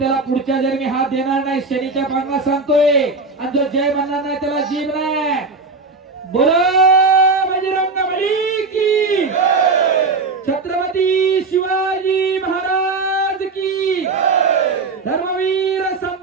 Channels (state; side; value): quieter; left; 4.0 dB